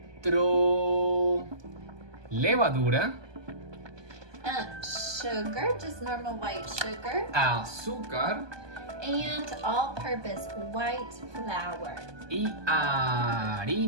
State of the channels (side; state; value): left; late; 1.2 ms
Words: levadura. Sugar, just normal white sugar. Azúcar. And all-purpose white flour. Y